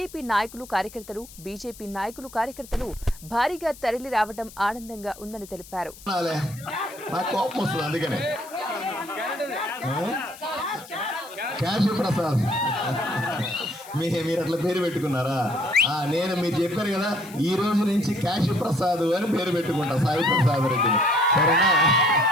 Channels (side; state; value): left; noise; hiss, 19 dB below the sound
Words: నాయకులు కార్యకర్తలు, బీజేపీ నాయకులు కార్యకర్తలు భారీగా తరలి రావడం ఆనందంగా ఉందని తెలిపారు. మీరు అట్లా పేరు పెట్టుకున్నారా? నేను మీరు చెప్పారు కదా, ఈ రోజు నుంచి కాశీ ప్రసాద్ అని పేరు పెట్టుకుంటా, సాయి ప్రసాద్ రెడ్డిని. సరేనా?